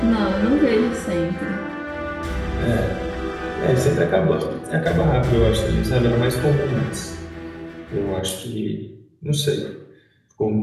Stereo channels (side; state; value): both; identical; correlation 1.00